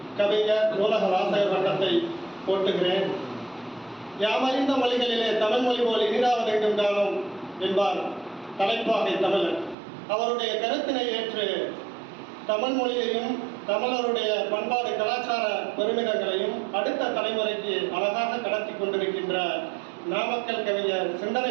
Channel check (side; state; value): left; drops out; at 9.8 s